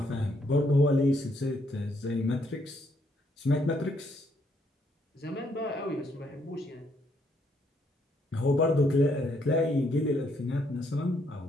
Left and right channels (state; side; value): normal; both; correlation 0.72